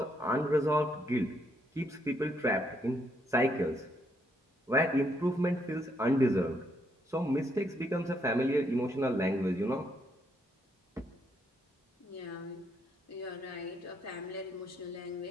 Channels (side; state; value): both; normal; correlation 0.74